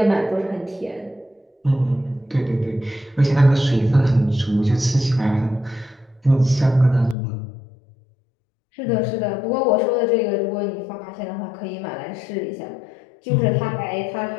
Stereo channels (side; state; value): right; drops out; at 7.2 s